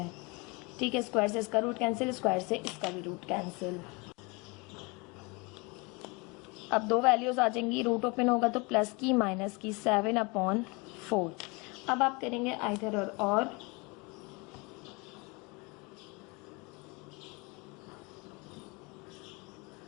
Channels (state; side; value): quieter; right; 28.1 dB